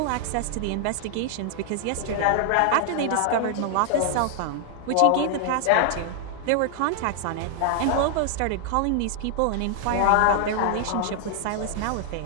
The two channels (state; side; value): different; both; correlation 0.00